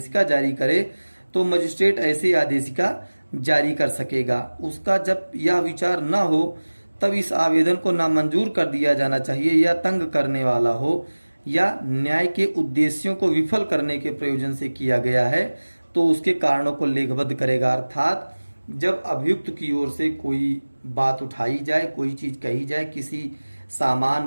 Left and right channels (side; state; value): both; inverted; correlation -1.00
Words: जारी करे, तो मजिस्ट्रेट ऐसी आदेशिका जारी कर सकेगा। उसका जब यह विचार न हो तब इस आवेदन को नामंजूर कर दिया जाना चाहिए, या तंग करने वाला हो या न्याय के उद्देश्यों को विफल करने के प्रयोजन से किया गया है, तो उसके कारणों को लेखबद्ध करेगा। अर्थात जब अभियुक्त की ओर से कोई बात उठाई जाए, कोई चीज कही जाए, किसी